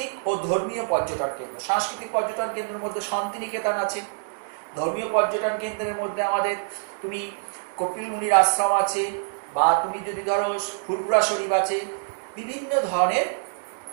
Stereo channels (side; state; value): left; silent; digital silence